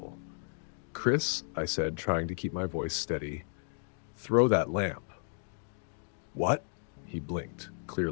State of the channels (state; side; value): silent; right; digital silence